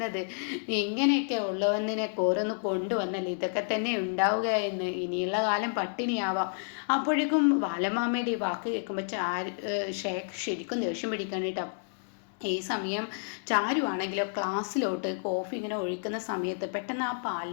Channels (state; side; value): silent; right; digital silence